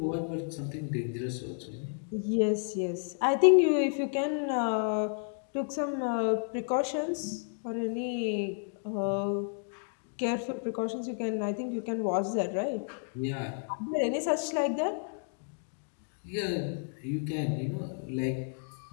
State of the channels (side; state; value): right; silent; digital silence